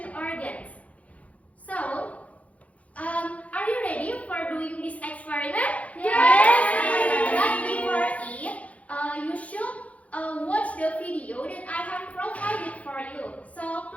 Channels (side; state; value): right; late; 0.067 ms